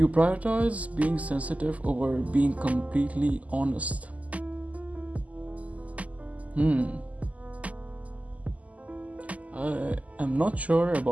prioritize being sensitive over being completely honest. I am not sure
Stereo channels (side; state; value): left; late; 0.072 ms